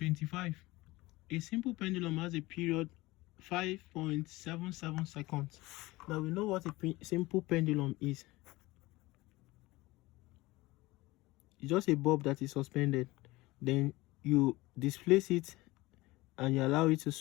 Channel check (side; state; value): right; quieter; 20.4 dB